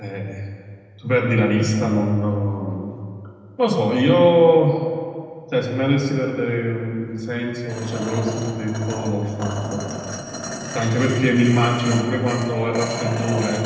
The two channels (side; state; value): both; identical; correlation 1.00